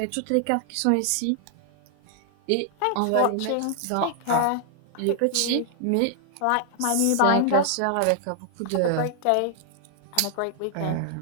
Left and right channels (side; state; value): both; different; correlation -0.01